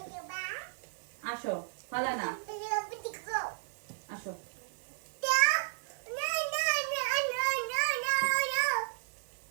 আসো, ফালা না, আসো।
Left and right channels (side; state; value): left; silent; digital silence